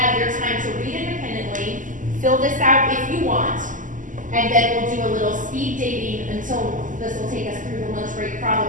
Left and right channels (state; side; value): late; left; 0.38 ms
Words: your time to read independently, fill this out if you want, and then we'll do a little speed dating until this will take us through the lunch break